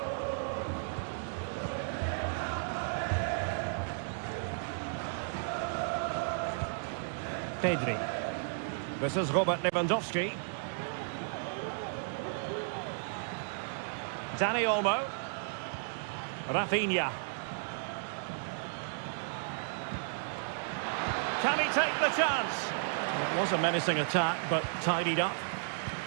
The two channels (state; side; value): silent; left; digital silence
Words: Pedri. This is Robert Lewandowski. Dani Olmo. Rafinha. Can he take the chance? Well, it was a menacing attack, but tidied up.